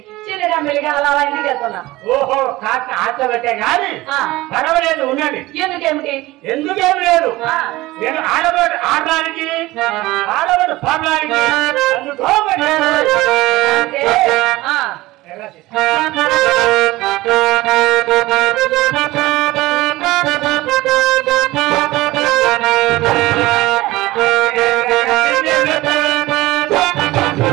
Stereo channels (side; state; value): left; quieter; 19.0 dB